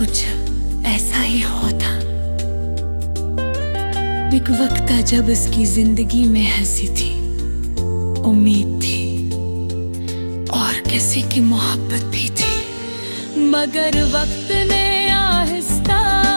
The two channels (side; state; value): both; inverted; correlation -1.00